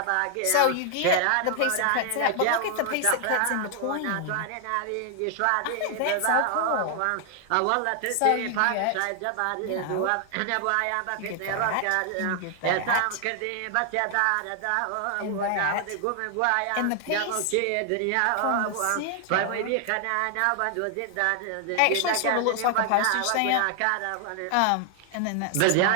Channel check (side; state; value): both; different; correlation 0.00